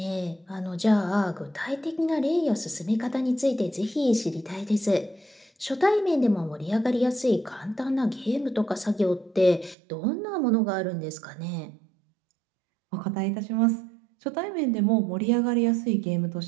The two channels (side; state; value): left; drops out; at 9.8 s